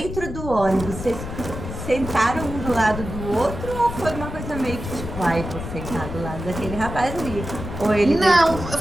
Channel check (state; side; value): noise; left; rumble, 8 dB below the sound